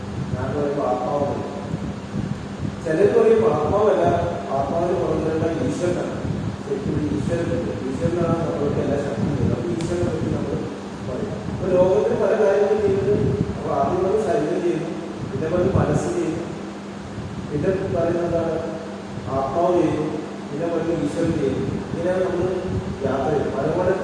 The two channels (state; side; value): identical; both; correlation 1.00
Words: ഞാൻ പറയുമ്പോൾ ആത്മാവാണ്. ചിലർ പറയും ആത്മാവല്ല, ആത്മാവിന് പുറകിലുള്ള ഈശ്വരനാണ്. ശരിക്കും ഈശ്വരനാണ് നമ്മൾക്ക് എല്ലാ ശക്തിയും. അപ്പോൾ ഈശ്വരനെ പറ്റി നമ്മൾ പറയും. അപ്പോൾ ലോകത്തിന് പല കാര്യങ്ങളും ചെയ്യുന്നത്. അപ്പോൾ ആദ്യം നമ്മൾ ശരീരം ചെയ്യുന്നു, പിന്നെ പറഞ്ഞ് മനസ്സ് ചെയ്യുന്നു, പിന്നെ പറയുന്നത് എന്താണ് ആത്മാവ് ചെയ്യുന്നു, പിന്നെ പറഞ്ഞ് ഈശ്വരൻ ചെയ്യുന്നു. ഇങ്ങനെയാണ് നമ്മൾ യാത്ര ചെയ്യുന്നത്.